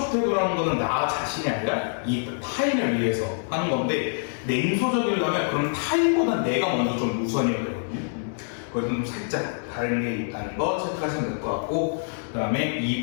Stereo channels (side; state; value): right; silent; digital silence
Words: 태도라는 거는 나 자신이 아니라 이 타인을 위해서 하는 건데, 냉소적이려면 그럼 타인보다 내가 먼저 좀 우선이어야 되거든요. 그래서 좀 살짝 다른 게 있다는 거 체크하시면 될 것 같고, 그 다음에